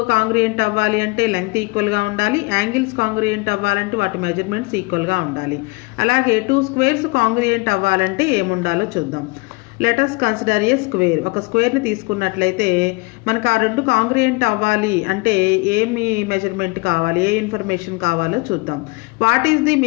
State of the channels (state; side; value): quieter; right; 27.7 dB